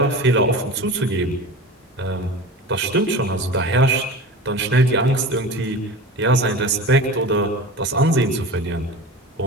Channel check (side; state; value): both; normal; correlation 0.33